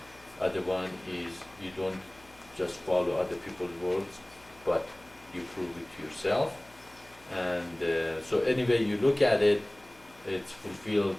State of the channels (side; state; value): left; noise; hum, 27 dB below the sound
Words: Other one is you don't just follow other people's words, but you prove it to yourself. And so anyway you look at it, it's fulfilled